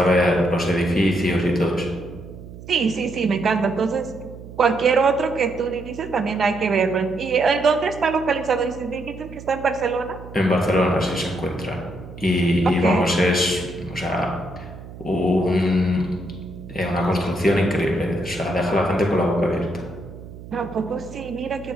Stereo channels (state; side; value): noise; right; hum, 15 dB below the sound